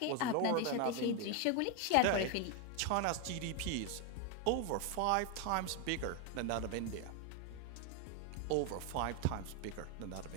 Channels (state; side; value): different; both; correlation 0.01